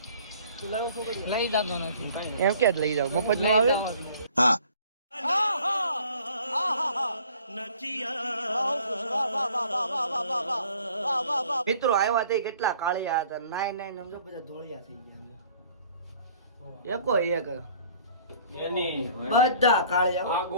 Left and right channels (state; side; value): inverted; both; correlation -0.54